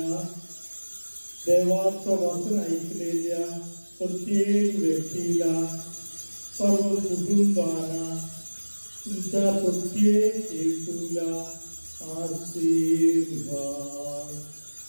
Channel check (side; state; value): both; inverted; correlation -1.00